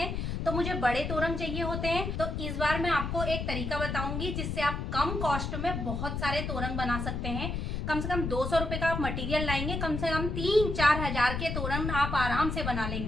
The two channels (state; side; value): noise; left; rumble, 3 dB below the sound